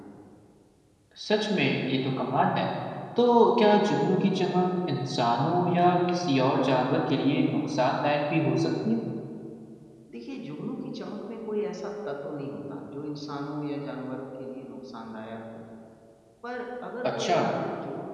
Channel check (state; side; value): identical; both; correlation 1.00